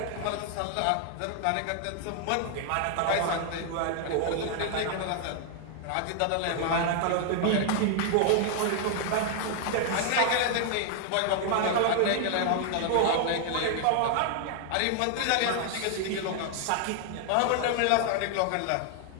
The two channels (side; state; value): both; different; correlation 0.00